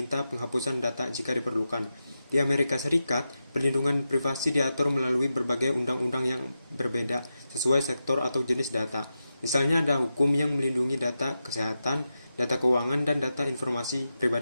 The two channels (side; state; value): both; inverted; correlation -0.90